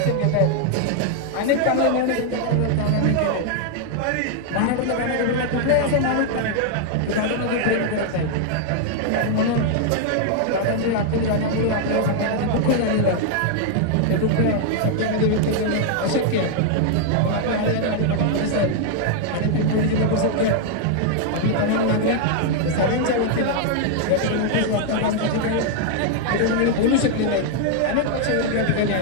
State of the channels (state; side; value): different; both; correlation 0.00